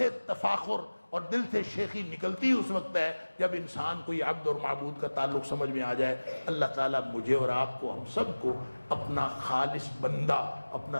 تفاخر اور دل سے شیخی نکلتی اس وقت ہے جب انسان کو یہ عبد اور معبود کا تعلق سمجھ میں آ جائے. اللہ تعالیٰ مجھے اور آپ کو، ہم سب کو اپنا خالص بندہ، اپنا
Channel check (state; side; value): inverted; both; correlation -1.00